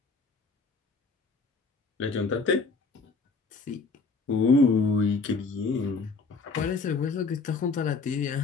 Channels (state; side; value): quieter; right; 4.2 dB